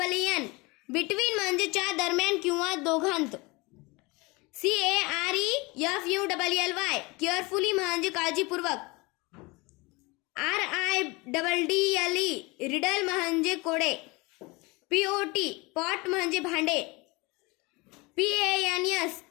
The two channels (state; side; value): quieter; right; 25.2 dB